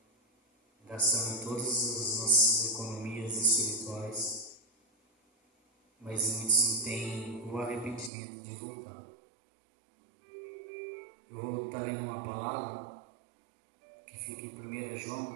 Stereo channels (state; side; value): drops out; left; at 8.1 s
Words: gastando todas as nossas economias espirituais, mas muitos não têm o arrependimento de voltar. Eu vou estar lendo uma palavra que fica em 1